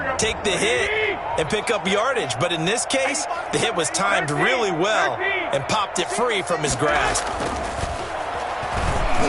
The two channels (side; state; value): both; identical; correlation 1.00